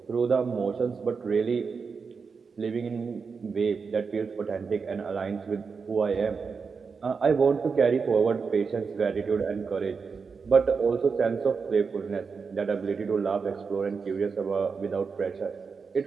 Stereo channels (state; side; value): quieter; left; 5.3 dB